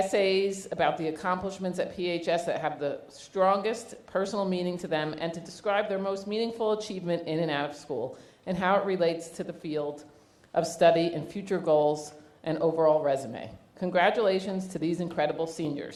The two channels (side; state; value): both; identical; correlation 1.00